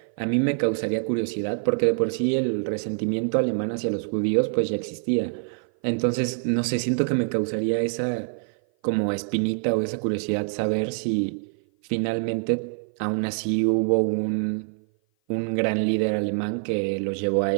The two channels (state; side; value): silent; left; 56 dB below the other